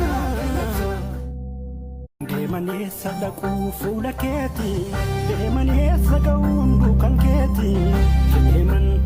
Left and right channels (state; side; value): identical; both; correlation 1.00